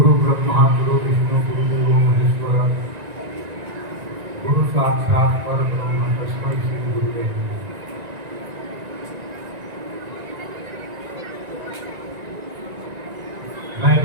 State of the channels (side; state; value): left; late; 1.9 ms